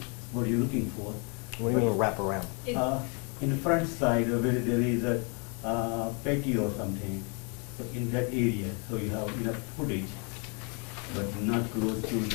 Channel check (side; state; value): right; quieter; 34.8 dB